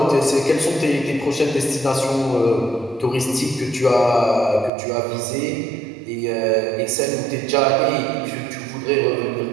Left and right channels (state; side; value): drops out; left; at 4.7 s